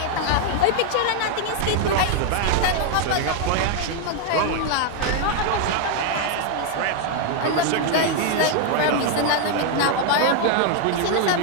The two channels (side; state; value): both; different; correlation 0.00